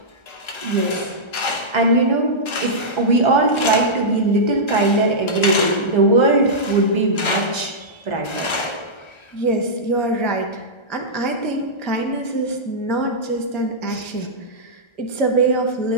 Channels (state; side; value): late; right; 1.3 ms